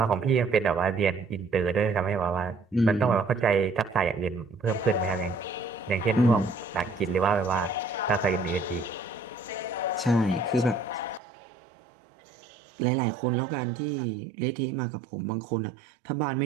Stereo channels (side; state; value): left; drops out; at 11.2 s